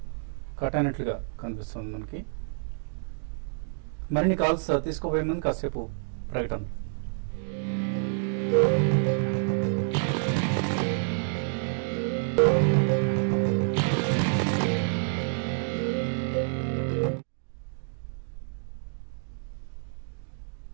cut అయినట్లుగా కనిపిస్తుంది మనకి. మరిన్ని కాల్స్ తీసుకోబోయే ముందు కాసేపు ప్రకటన.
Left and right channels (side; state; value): left; silent; digital silence